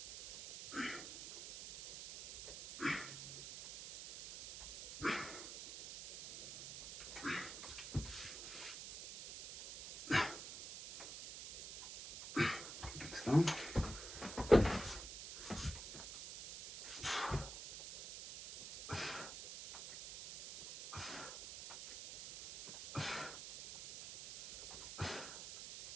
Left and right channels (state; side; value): noise; right; hiss, 10 dB below the sound